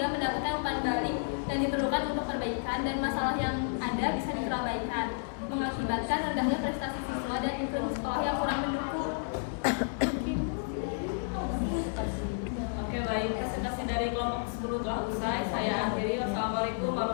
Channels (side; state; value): right; silent; 57 dB below the other